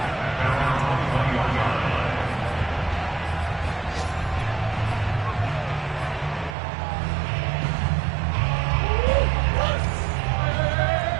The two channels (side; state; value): left; drops out; at 6.6 s